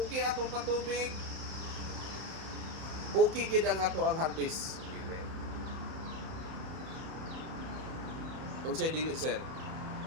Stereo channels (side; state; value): left; late; 31 ms